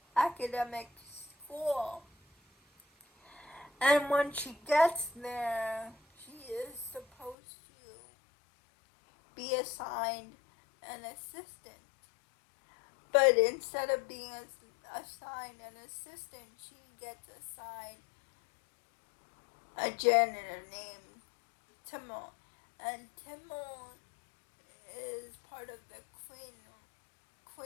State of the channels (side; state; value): right; drops out; at 7.4 s